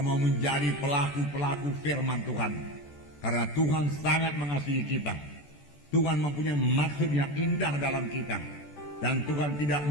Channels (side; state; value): right; late; 14 ms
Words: mau menjadi pelaku-pelaku firman Tuhan. Karena Tuhan sangat mengasihi kita. Tuhan mempunyai maksud yang indah dalam kita. Dan Tuhan tidak